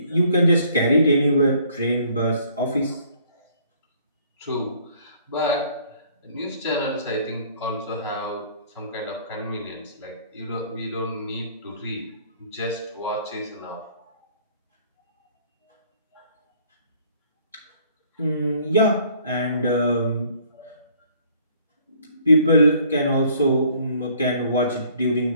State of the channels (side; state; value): both; inverted; correlation -0.59